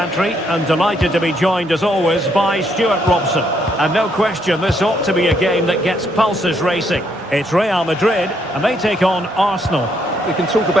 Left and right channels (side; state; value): both; normal; correlation 0.73